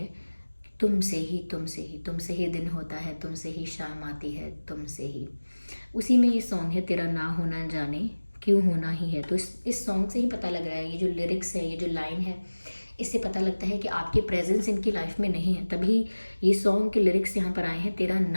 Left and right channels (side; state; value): both; inverted; correlation -1.00